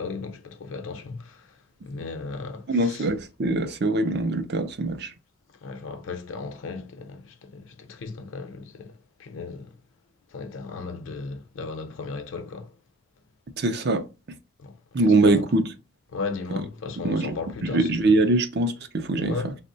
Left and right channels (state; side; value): normal; both; correlation 0.45